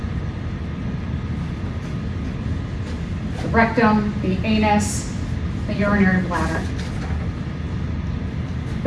rectum, the anus, the urinary bladder,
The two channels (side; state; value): both; identical; correlation 1.00